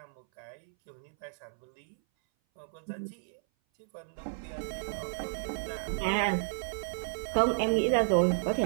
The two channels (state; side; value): silent; left; 56 dB below the other